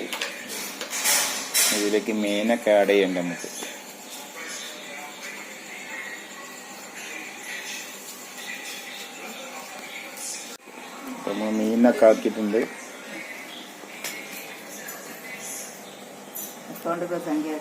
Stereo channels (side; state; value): both; identical; correlation 1.00